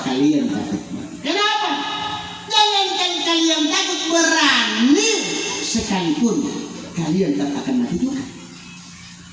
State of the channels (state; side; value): identical; both; correlation 1.00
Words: kalian takut. Kenapa? Jangankan kalian takut, berani sekalipun kalian tak akan mati juga.